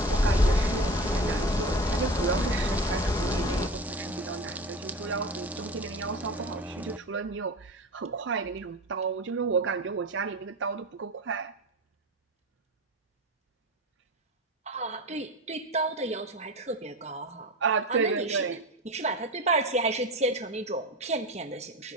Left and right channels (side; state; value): both; normal; correlation 0.30